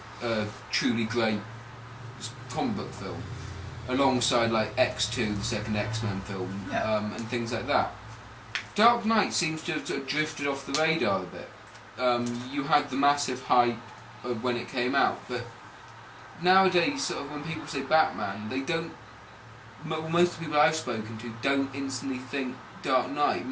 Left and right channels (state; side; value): identical; both; correlation 1.00